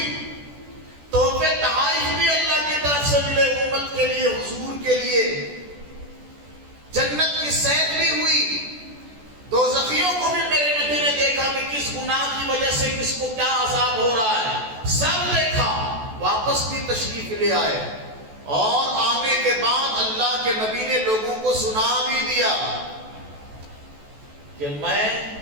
تحفے تحائف بھی اللہ کی طرف سے ملے امت کے لیے، حضور کے لیے، جنت کی سیر بھی ہوئی، دوزخیوں کو بھی میرے نبی نے دیکھا کہ کس گناہ کی وجہ سے کس کو کیا عذاب ہو رہا ہے، سب دیکھا، واپس بھی تشریف لے آئے، اور آنے کے بعد اللہ کے نبی نے لوگوں کو سنا بھی دیا کہ میں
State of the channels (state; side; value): late; left; 14 ms